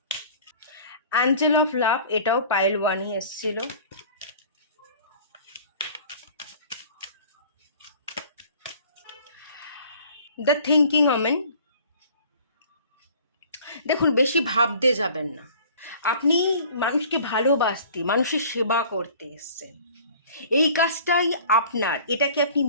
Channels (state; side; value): inverted; both; correlation -0.48